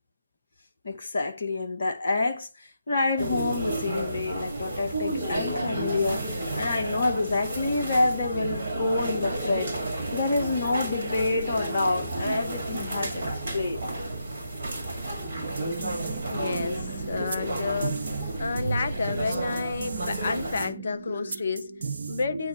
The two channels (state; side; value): inverted; both; correlation -0.82